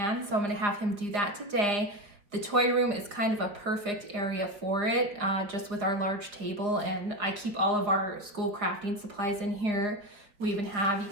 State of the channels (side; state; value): left; late; 4.6 ms